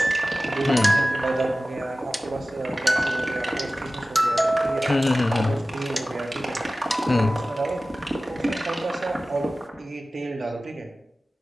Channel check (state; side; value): normal; both; correlation 0.96